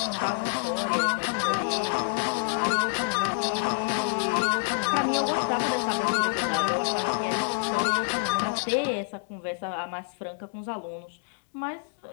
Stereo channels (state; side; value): silent; right; digital silence